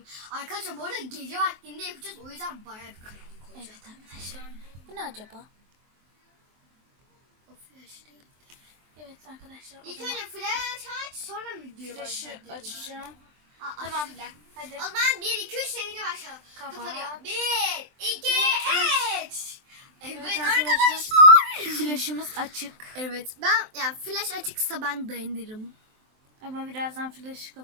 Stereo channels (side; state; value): left; late; 23 ms